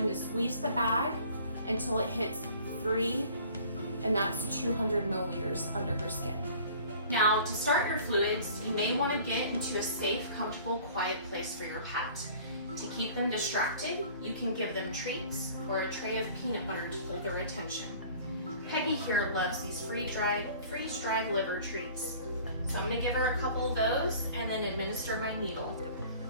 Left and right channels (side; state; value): both; inverted; correlation -0.48